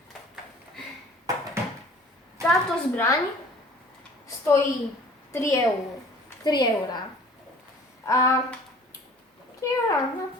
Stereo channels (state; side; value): normal; both; correlation 0.49